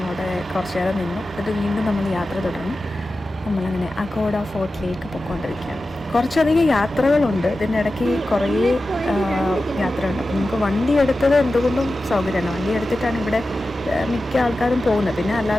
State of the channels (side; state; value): both; normal; correlation 0.93